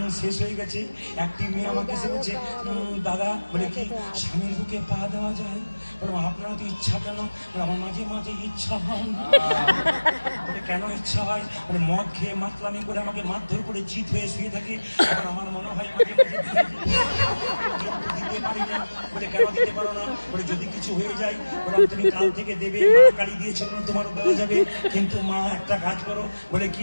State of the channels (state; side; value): inverted; both; correlation -1.00